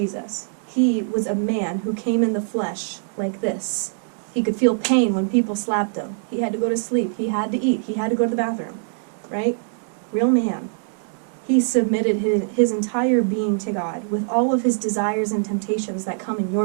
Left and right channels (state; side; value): silent; left; digital silence